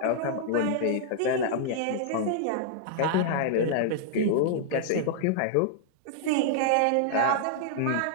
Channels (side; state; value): both; different; correlation -0.01